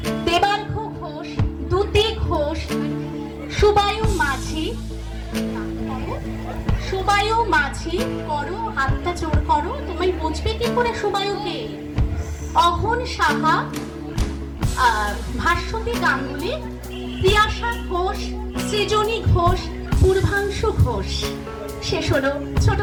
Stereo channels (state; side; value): identical; both; correlation 1.00